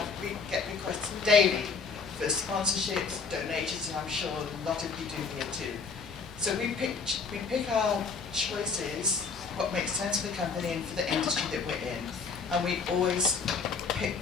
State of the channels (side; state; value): right; quieter; 5.0 dB